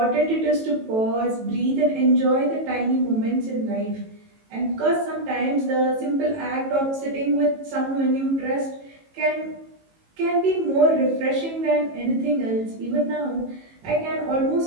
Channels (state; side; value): late; left; 18 ms